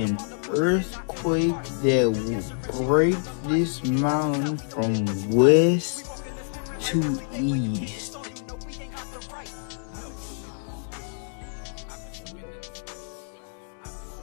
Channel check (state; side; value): silent; right; 60 dB below the other